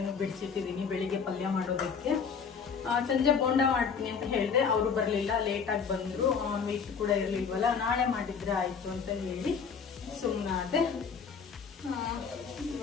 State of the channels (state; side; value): quieter; right; 6.2 dB